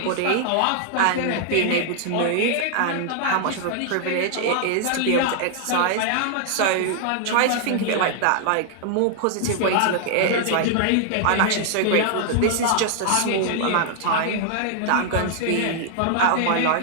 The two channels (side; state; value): both; different; correlation -0.01